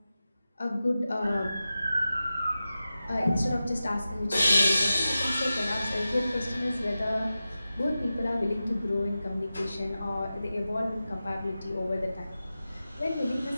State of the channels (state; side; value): inverted; both; correlation -0.93